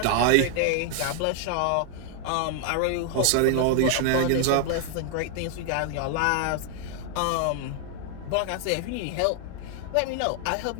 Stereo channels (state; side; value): different; both; correlation 0.00